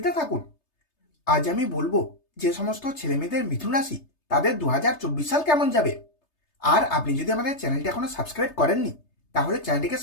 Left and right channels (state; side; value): late; right; 3.3 ms